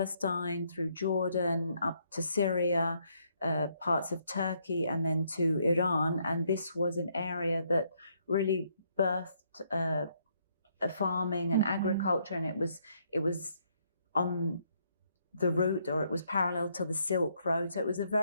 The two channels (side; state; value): both; inverted; correlation -0.72